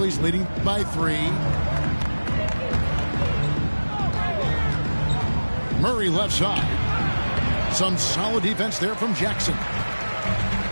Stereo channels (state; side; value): inverted; both; correlation -1.00